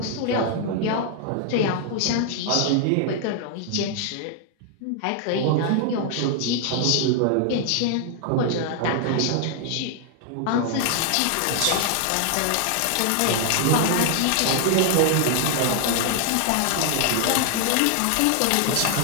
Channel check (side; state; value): both; different; correlation 0.00